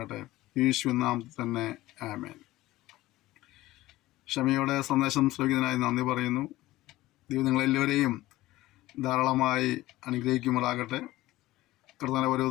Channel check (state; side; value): quieter; right; 17.2 dB